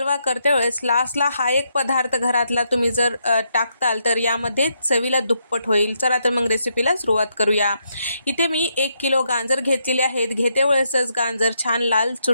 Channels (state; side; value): inverted; both; correlation -0.78